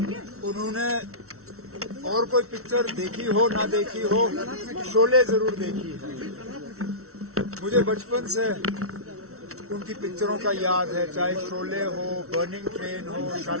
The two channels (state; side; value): late; left; 0.63 ms